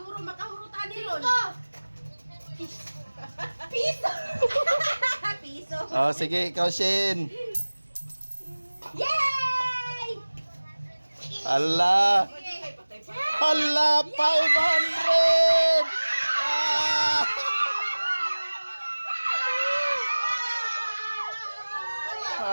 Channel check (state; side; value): inverted; both; correlation -1.00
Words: makahurutan ni Ron. Piso! Piso! Sige, ikaw Shin. Yay! Ala. Ala, 500! Ah!